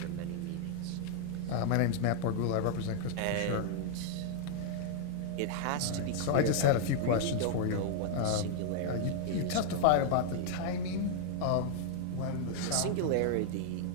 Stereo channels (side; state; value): both; different; correlation 0.00